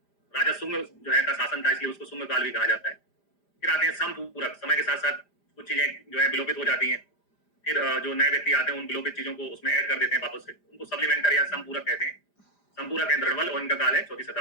राजा सुंग जो है का शासन था, इसलिए उसको सुंग काल भी कहा जाता है। फिर आते हैं समपूरक। समय के साथ साथ कुछ चीजें जो है विलोपित हो जाती हैं, फिर जो नए व्यक्ति आते हैं उन विलोपित चीजों को उसमें ऐड कर देते हैं वापस से, उनको सप्लीमेंटर या समपूरक कहते हैं। समपूरक है द्रवल और इनका काल है 4वीं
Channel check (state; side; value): late; right; 5.0 ms